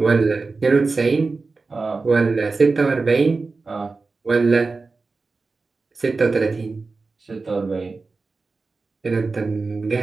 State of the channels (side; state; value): left; quieter; 4.0 dB